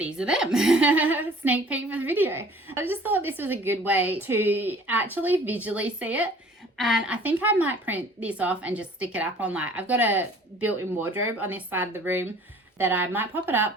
Sneak peek for the video. I just thought this was a good way to actually visually see it. And I think I might print this off and just stick it up on I've got a built-in wardrobe on this side of the room that I might pop it up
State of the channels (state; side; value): normal; both; correlation 0.51